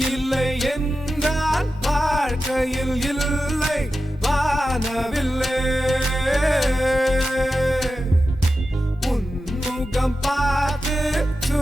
இல்லை என்றால் வாழ்க்கையில் இல்லை வானவில்லை. உன்முகம் பார்த்து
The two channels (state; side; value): normal; both; correlation 0.92